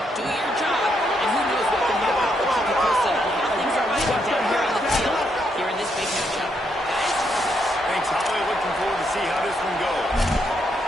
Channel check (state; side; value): normal; both; correlation 0.77